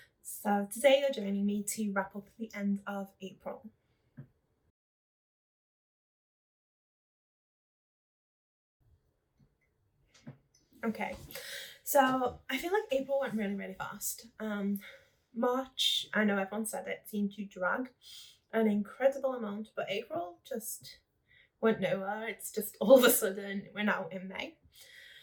So today you're joining me to wrap up the end of April. Okay, so I feel like April went really fast. March, I know everyone said it, seemed to drag an incredible amount, but April just went nowhere. It's just all of a sudden we're now in May.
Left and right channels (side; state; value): both; identical; correlation 1.00